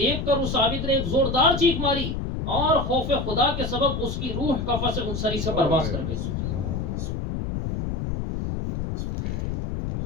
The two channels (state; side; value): noise; left; rumble, 3 dB below the sound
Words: کر اس عابد نے ایک زوردار چیخ ماری اور خوف خدا کے سبب اس کی روح کفن سے انصری سے پرواز کر گئی۔